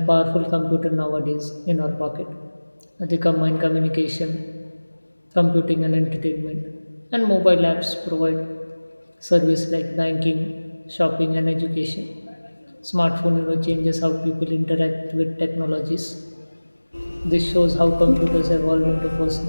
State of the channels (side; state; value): both; inverted; correlation -1.00